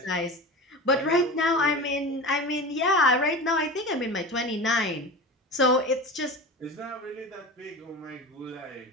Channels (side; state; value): both; normal; correlation 0.30